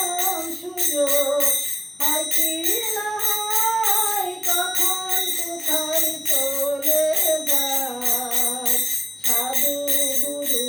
সুযোগ হয় কি না হয়, কখন কোথায় চলে যায় সাধু গুরু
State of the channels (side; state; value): both; normal; correlation 0.95